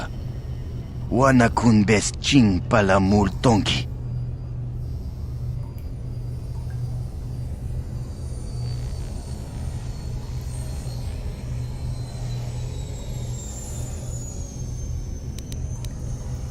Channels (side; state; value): both; identical; correlation 1.00